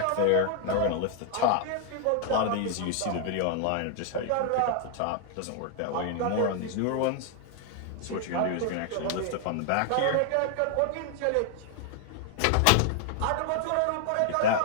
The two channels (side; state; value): both; different; correlation 0.00